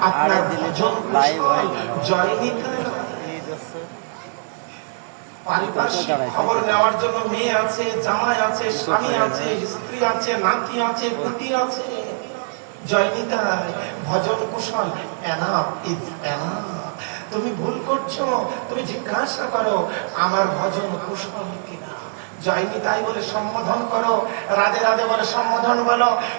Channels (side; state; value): left; silent; digital silence